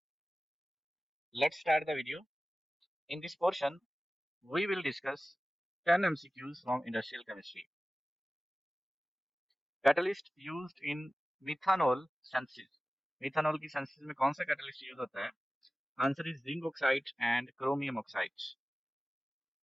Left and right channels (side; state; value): both; normal; correlation 0.96